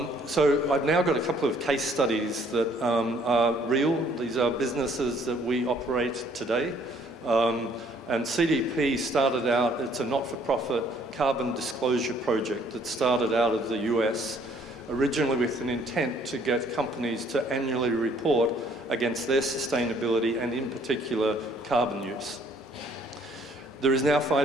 So I've now got a couple of case studies that are real. These are businesses that we operate today. And CDP started out, it's a not-for-profit carbon disclosure project that started out of the US, originally with an intent to get companies to annually report against their sustainability and in particular carbon use. There is now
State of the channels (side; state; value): both; normal; correlation 0.62